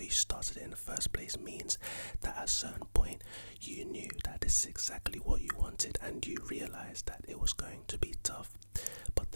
you started it in the first place means that at a certain point you knew that this is exactly what you wanted and you realized that it was going to be tough, but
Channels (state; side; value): inverted; both; correlation -1.00